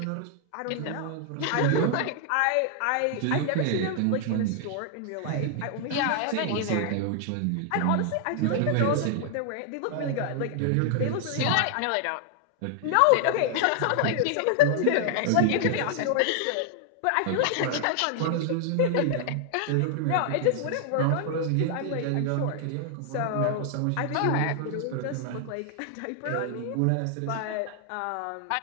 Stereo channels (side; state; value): both; different; correlation 0.00